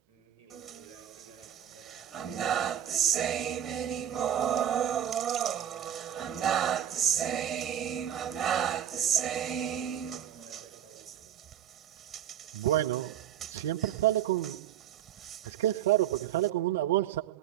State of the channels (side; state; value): left; quieter; 10.2 dB